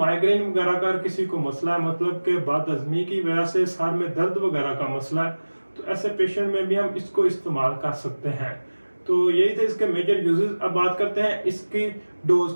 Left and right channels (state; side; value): inverted; both; correlation -1.00